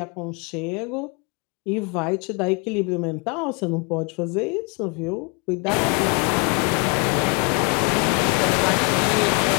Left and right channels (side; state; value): right; quieter; 33.3 dB